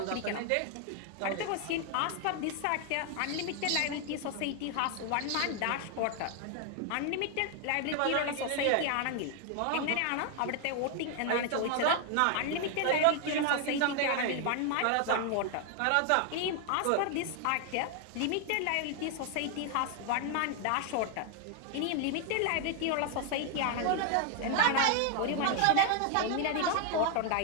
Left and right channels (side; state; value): both; different; correlation 0.00